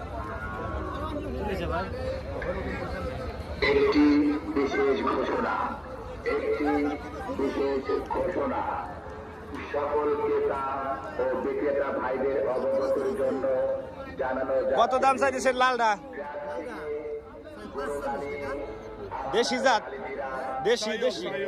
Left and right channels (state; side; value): identical; both; correlation 1.00